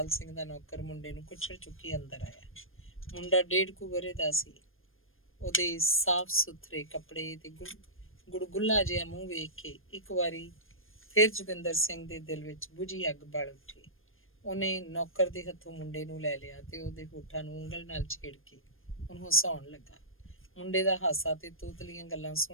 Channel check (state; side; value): late; right; 0.60 ms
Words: ਸਿੰਘ ਦਾ ਨੌਕਰ ਮੁੰਡੇ ਨੂੰ ਕੁੱਛੜ ਚੁੱਕੀ ਅੰਦਰ ਆਇਆ। ਮੁੰਡਾ 1.5 ਕੁ ਵਰ੍ਹੇ ਦਾ ਸੀ। ਉਹਦੇ ਸਾਫ਼ ਸੁਥਰੇ ਕੱਪੜੇ ਤੇ ਗੁੜਗੁੱਲਾ ਜਿਹਾ ਮੂੰਹ ਵੇਖ ਕੇ ਇੱਕ ਵਾਰੀ ਫਿਰ ਜੋਗਿੰਦਰ ਸਿੰਘ ਦੇ ਦਿਲ ਵਿੱਚ ਬੁਝੀ ਅੱਗ ਬਲ ਉੱਠੀ। ਉਹਨੇ ਨੌਕਰ ਦੇ ਹੱਥੋਂ ਮੁੰਡੇ ਨੂੰ ਲੈ ਲਿਆ ਤੇ ਉਹਦੇ ਹੋਠਾਂ ਨੂੰ ਉਂਗਲ ਨਾਲ ਛੇੜ ਕੇ ਉਹਨੂੰ ਹਸਾਉਣ ਲੱਗਾ। ਮੁੰਡੇ ਦਾ ਹਾਸਾ ਤੇ ਤੋਤਲੀਆਂ ਗੱਲਾਂ